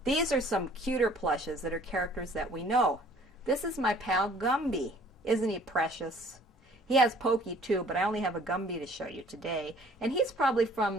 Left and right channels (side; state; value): both; normal; correlation 0.54